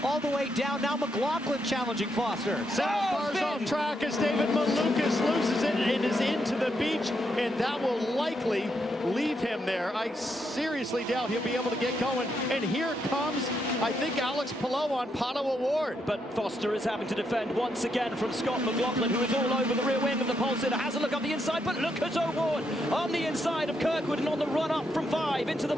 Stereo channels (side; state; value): both; normal; correlation 0.79